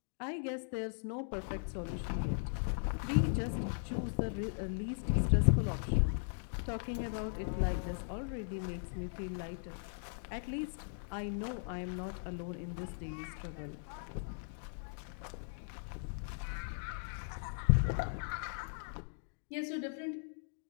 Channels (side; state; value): right; silent; digital silence